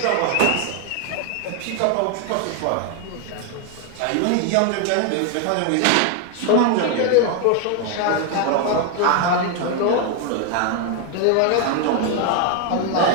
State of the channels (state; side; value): different; both; correlation 0.01